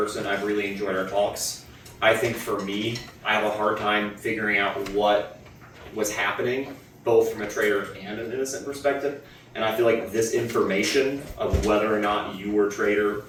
I've really enjoyed our talks. I think for me, I have a hard time figuring out what was happening, both from a traitor and an innocent perspective. And I feel like this information of whether or not you were traitor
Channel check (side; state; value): both; identical; correlation 1.00